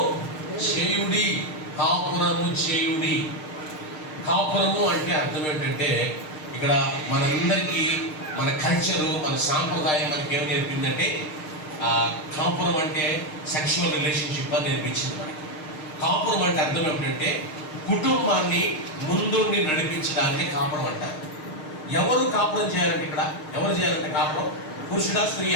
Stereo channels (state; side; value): late; right; 6.5 ms